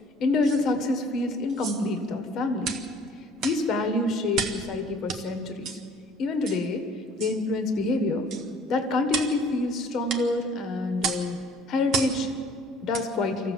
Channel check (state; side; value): normal; both; correlation 0.53